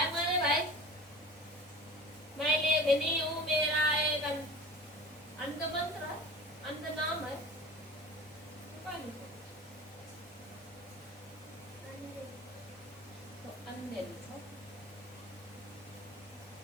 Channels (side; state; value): both; normal; correlation 0.38